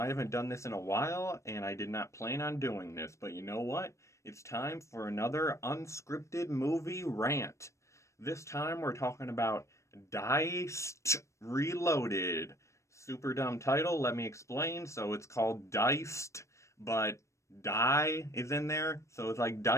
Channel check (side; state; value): right; late; 0.14 ms